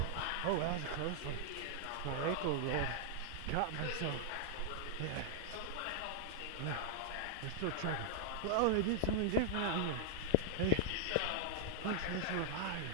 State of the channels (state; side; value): different; both; correlation -0.01